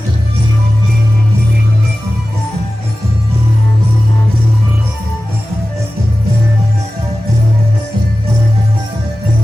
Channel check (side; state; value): both; normal; correlation 0.95